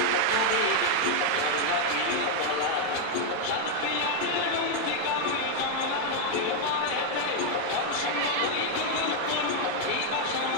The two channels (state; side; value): different; both; correlation 0.00